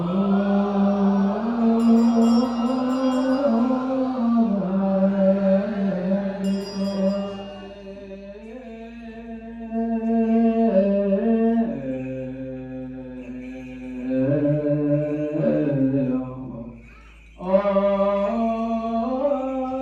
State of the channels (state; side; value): identical; both; correlation 1.00